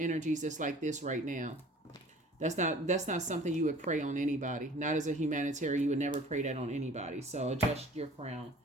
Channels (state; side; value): normal; both; correlation 0.47